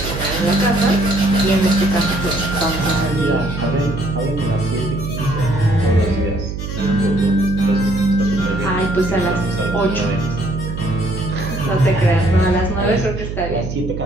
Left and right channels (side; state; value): right; noise; hum, 6 dB below the sound